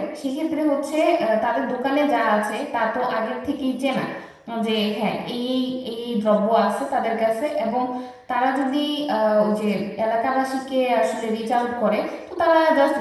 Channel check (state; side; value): identical; both; correlation 1.00